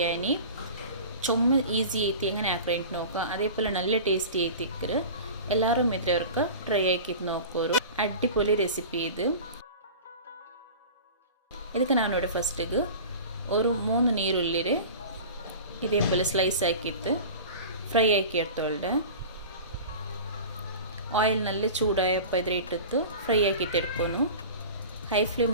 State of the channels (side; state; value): both; inverted; correlation -0.36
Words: ചുമ ഈസി ಐತಿ എങ്ങനെ ആക്രേಂಟ್ നോക്കുക അതേപോലെ നല്ല ടേസ്റ്റി ಐತಿಕ್ಕರು ಎಲ್ಲರೂ ಮಿತ್ರವರ್ಕ ಟ್ರೈ ಆಕಿತ್ ನೋಕೋರು ಅಡ್ಡಿಪೊಲಿ ರೆಸಿಪಿ ಇದಕ್ಕೆ ನಾನು ನೋಡಿ ಫಸ್ಟಿಗೆ ഒരു 3 ನೀರುಳ್ಳಿ ഇതേപോലെ സ്ലൈസ് ആക്കിയിട്ട് ഫ്രൈ ആക്കി എടുത്തോളുടെ ಆಯಿಲ್ ನಲ್ಲಿ ಚೂಡಾಯಪ್ಪ ಇದ್ರೆ ಇಟ್ಟಿತ್ತು ಫ್ರೈ ಆಕಿತ್ತು ಎಡ್ಕೊನು ಹೈ